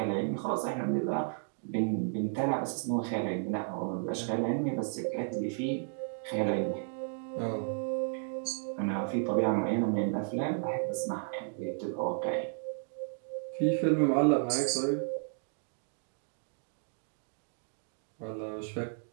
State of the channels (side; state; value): left; silent; digital silence